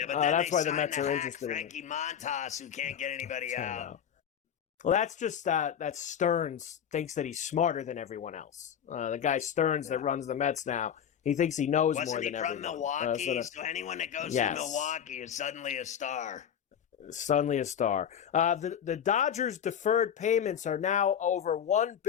but that's why the Mets are interested Frankie in Montas, who can't get anybody out. Well, that's just that Stearns thinks that he's smarter than everyone else. The guy Stearns that runs the Mets now, he thinks he knows more than everyone. Wasn't he from Milwaukee? So anyone that goes to Milwaukee is suddenly a star. Suddenly a star. The Dodgers' deferred payments are now over $1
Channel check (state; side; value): quieter; right; 8.7 dB